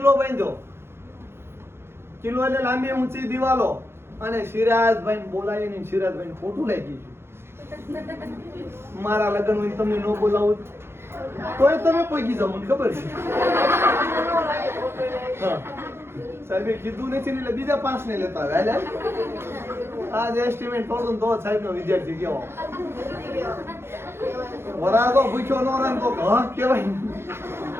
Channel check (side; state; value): left; late; 0.12 ms